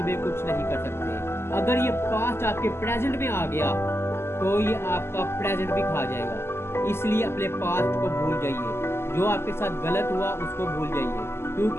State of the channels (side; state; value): right; late; 0.12 ms